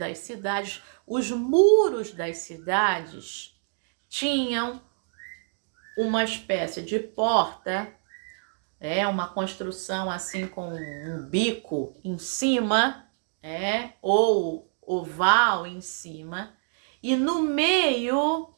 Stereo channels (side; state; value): left; silent; 60 dB below the other